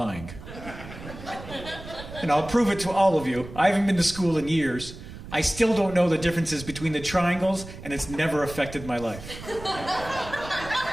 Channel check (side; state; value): right; noise; rumble, 13 dB below the sound